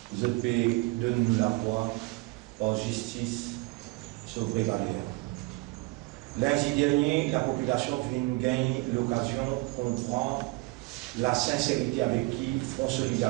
je peux donner nous la foi par justice sur vraie valeur. Lundi dernier, la population vient gagner l'occasion de comprendre la sincérité avec qui Front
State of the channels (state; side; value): quieter; left; 24.1 dB